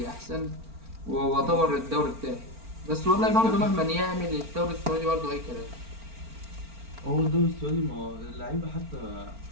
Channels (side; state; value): left; late; 4.4 ms